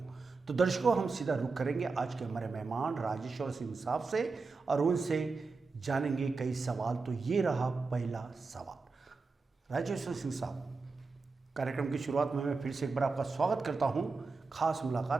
तो दर्शकों, हम सीधा रुख करेंगे आज के हमारे मेहमान राजेश्वर सिंह साहब से और उनसे जानेंगे कई सवाल। तो ये रहा पहला सवाल। राजेश्वर सिंह साहब, कार्यक्रम की शुरुआत में मैं फिर से एक बार आपका स्वागत करता हूं खास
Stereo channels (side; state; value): left; quieter; 4.2 dB